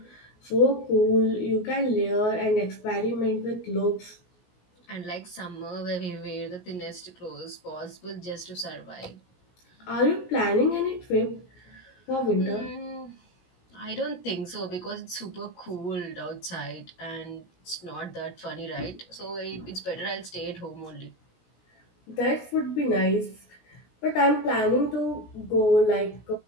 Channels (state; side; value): late; right; 17 ms